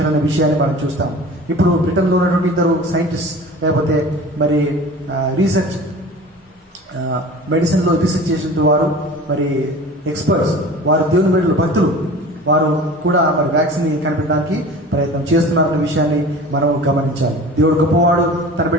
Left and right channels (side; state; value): both; normal; correlation 0.39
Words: విషయాన్ని మనం చూస్తాం. ఇప్పుడు బ్రిటన్లో ఉన్నటువంటి ఇద్దరు సైంటిస్ట్, లేకపోతే మరి రీసెర్చ్ మెడిసిన్లో రీసెర్చ్ చేసిన వారు, మరి ఎక్స్పర్ట్స్, వారు దేవుని బిడ్డలు, భక్తులు, వారు కూడా మరి వ్యాక్సిన్ కనిపెట్టడానికి ప్రయత్నం చేస్తున్నారన్న విషయాన్ని మనం గమనించాలి. దేవుడు గొప్పవాడు, తన